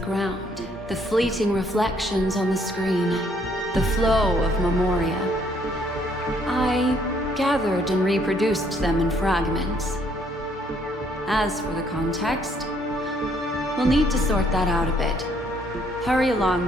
The fleeting reflections on the screen. The flow of memoria. I gathered and reproduced them in fragments. As for the context, we'll need to sort that out a bit. Hurry along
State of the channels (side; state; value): both; normal; correlation 0.67